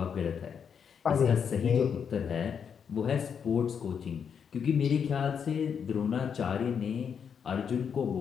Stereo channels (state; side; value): quieter; right; 7.2 dB